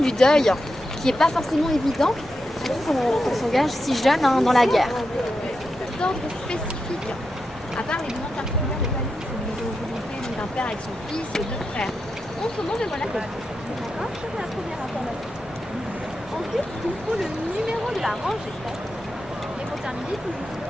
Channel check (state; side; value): normal; both; correlation 0.87